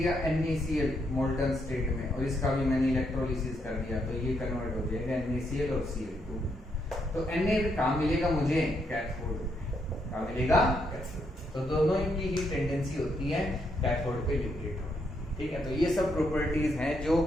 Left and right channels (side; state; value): both; normal; correlation 0.77